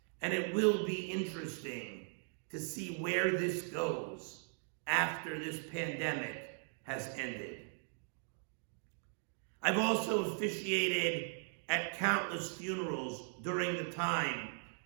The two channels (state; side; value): silent; left; 52 dB below the other